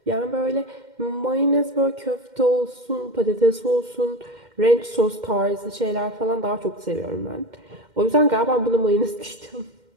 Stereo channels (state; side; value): late; left; 2.1 ms